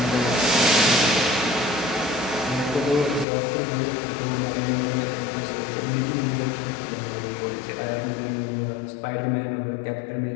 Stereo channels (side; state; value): right; drops out; at 3.2 s